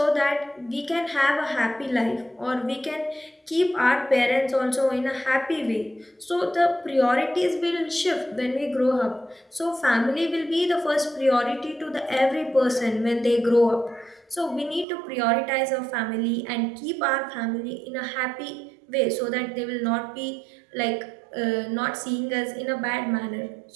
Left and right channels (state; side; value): drops out; left; at 14.9 s